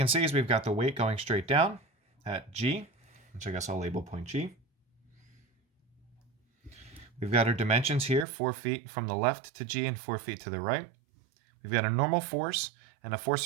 see is we've got the weight going straight down at G, which I guess I'll label point G. We've got our dimensions here, 4 feet from the left to G and 4 feet to the right. We've got a normal force and a force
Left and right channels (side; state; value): left; drops out; at 8.2 s